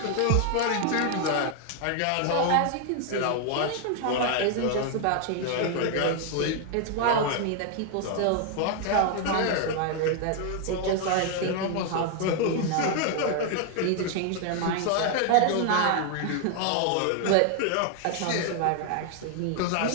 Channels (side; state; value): both; different; correlation 0.00